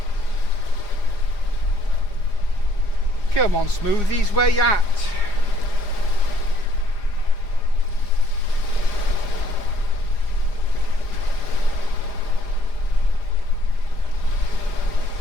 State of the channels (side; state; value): right; late; 4.9 ms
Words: Come on, Smoothies, where you at?